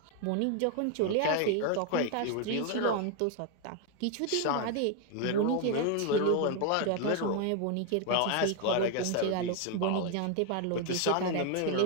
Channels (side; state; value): both; different; correlation 0.01